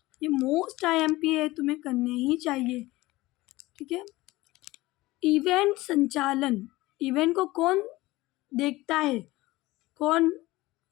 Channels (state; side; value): quieter; right; 19.3 dB